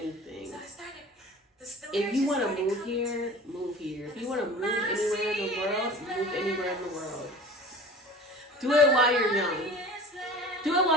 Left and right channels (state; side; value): normal; both; correlation 0.40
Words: If you want to move here, move here. If you want to move anywhere in the world, move anywhere in the world. Do it while you're young. Do it